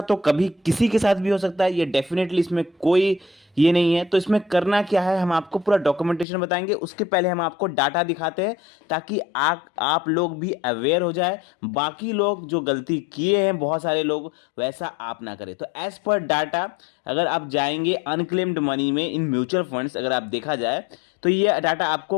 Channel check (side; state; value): right; drops out; at 6.2 s